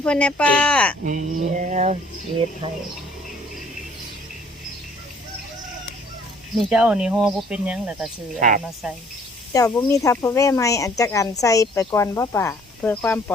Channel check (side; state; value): both; normal; correlation 0.58